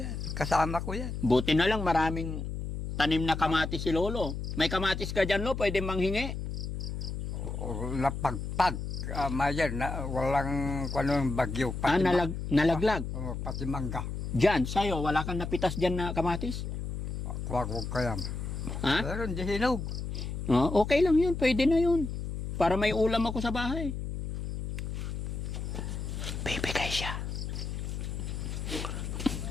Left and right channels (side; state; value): left; noise; hum, 5 dB below the sound